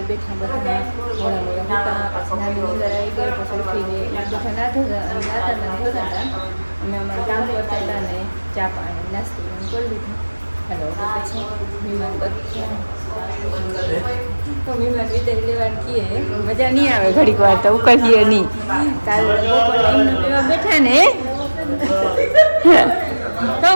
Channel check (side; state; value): both; inverted; correlation -1.00